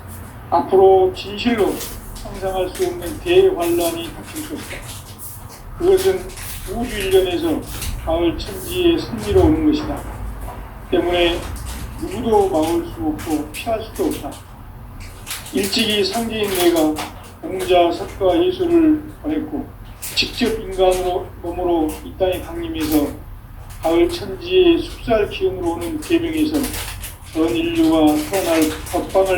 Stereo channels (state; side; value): identical; both; correlation 1.00